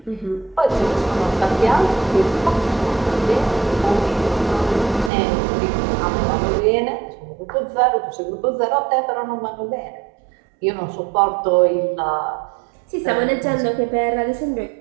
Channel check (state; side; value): drops out; left; at 5.1 s